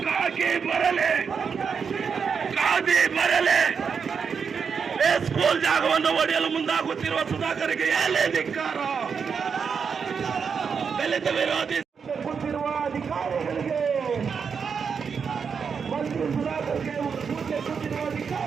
ಕಾಕಿ ಬರಲಿ, ಖಾದಿ ಬರಲಿ. ಸ್ಕೂಲ್ ಜಾಗವನ್ನು ಒಡೆಯಲು ಮುಂದಾಗುತ್ತಿರುವ ಸುಧಾಕರ್ಗೆ ಧಿಕ್ಕಾರ. ದಲಿತ ವಿರೋಧಿ ಕೂತಿರುವ ಅಧಿಕಾರಿಗಳಿಗೆ, ಮಂತ್ರಿ ಸುಧಾಕರ್ಗೆ ಕೂತಿರುವ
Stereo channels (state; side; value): quieter; left; 6.2 dB